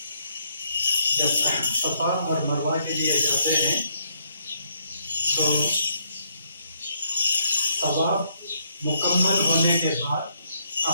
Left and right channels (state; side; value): inverted; both; correlation -0.72